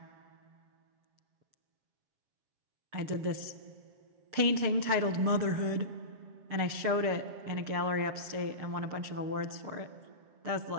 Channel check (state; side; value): late; left; 7.4 ms